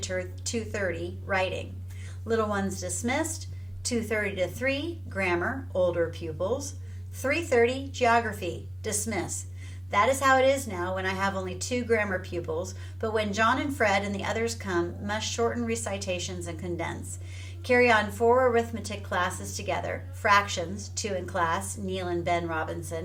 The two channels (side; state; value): right; noise; rumble, 29 dB below the sound